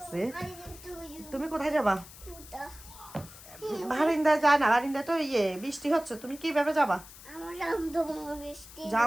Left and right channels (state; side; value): noise; left; hiss, 18 dB below the sound